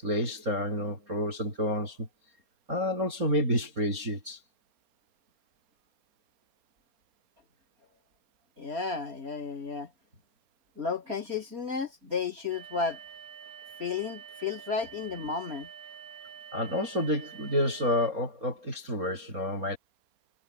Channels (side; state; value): left; late; 4.3 ms